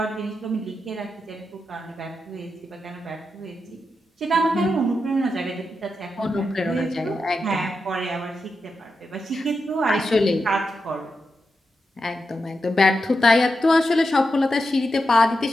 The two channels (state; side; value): normal; both; correlation 0.87